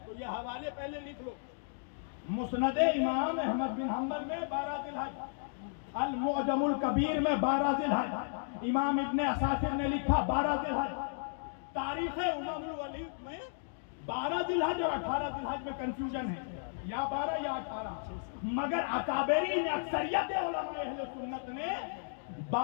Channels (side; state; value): right; silent; digital silence